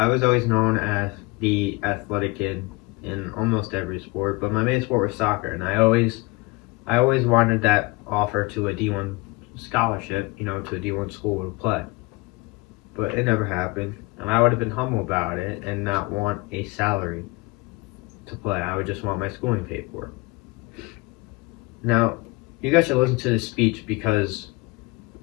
was always known as the athletic kid in almost every sport, but my main sport was soccer, and I always wanted that offer to a D1 scholarship, to a D1 school to play. But it never happened, and I would have been humble about it and not want a salary to play. I would just want my schooling paid for. Now, you guys should listen to this speech because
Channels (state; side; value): quieter; right; 25.0 dB